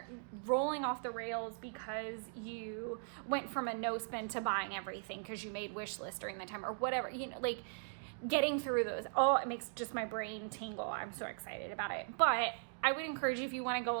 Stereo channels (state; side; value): silent; left; digital silence